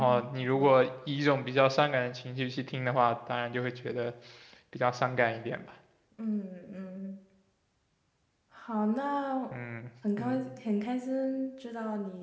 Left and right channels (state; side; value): identical; both; correlation 1.00